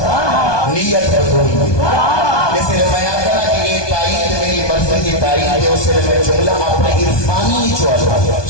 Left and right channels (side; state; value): right; late; 1.2 ms